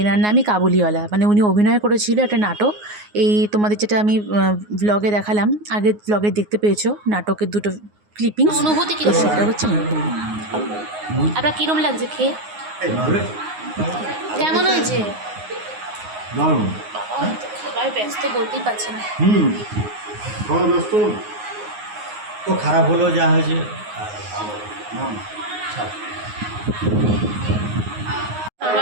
এনার নামই কাবুলিওয়ালা, মানে উনি অভিনয় করেছিল একটা নাটক। এই তোমাদের যেটা আমি ব্লগে দেখালাম, আগের ব্লগে দেখতে পেয়েছো নাটকের দুটো ক্লিপিংস। অনুভূতি কি সেটা হচ্ছে আপনার কিরম লাগছে খেয়ে? কেমন হয়েছে? দারুণ। বাবা তো খাবার ব্যস্ত বলতেই পারছে না। খাওয়া ব্যস্ত তো খারাপ হলো যা হয়েছে।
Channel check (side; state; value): left; late; 9.5 ms